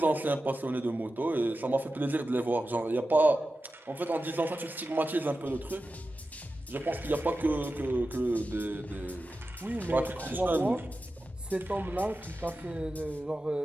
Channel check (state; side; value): normal; both; correlation 0.93